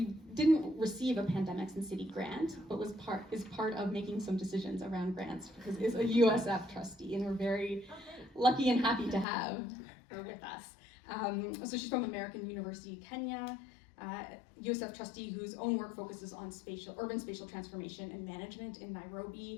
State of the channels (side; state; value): right; drops out; at 9.2 s